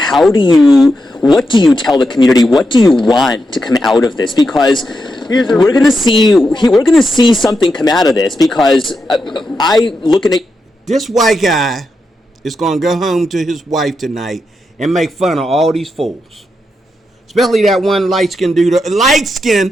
what do you tell the community? What do you want to come out of this? Because we're gonna see something come out of this. Because looking at this white guy is gonna go home to his wife tonight and make fun of all these fools, especially that one light-skinned dude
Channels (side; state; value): both; normal; correlation 0.86